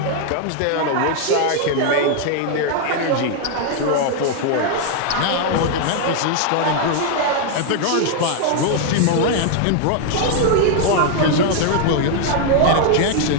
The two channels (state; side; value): different; both; correlation 0.00